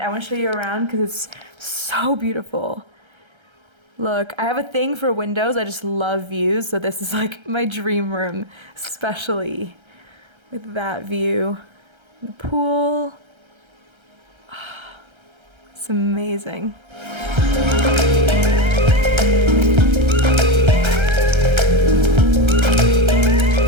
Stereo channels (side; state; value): left; late; 1.3 ms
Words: want to show you around because it's so beautiful. Look, I have a thing for windows. I just love views, so this is like my dream room, especially with that view. The pool. It's amazing.